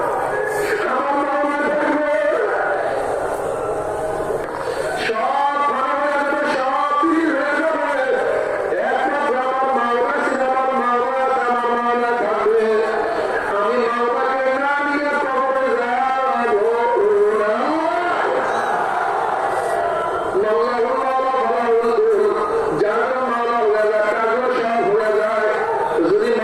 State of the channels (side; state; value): both; identical; correlation 1.00